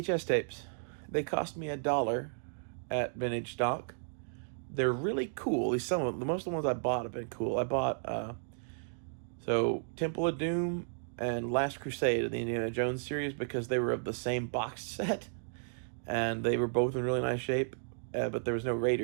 tapes. They cost me $1 at Vintage Stock. They're really cool. At least most of the ones I bought have been cool. I bought Temple of Doom and Last Crusade of the Indiana Jones series because they were of the same box set, and they were both in really nice shape. But there was no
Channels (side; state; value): left; silent; digital silence